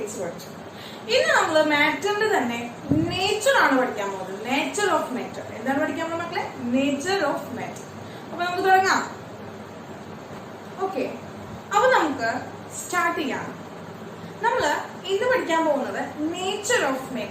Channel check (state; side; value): identical; both; correlation 1.00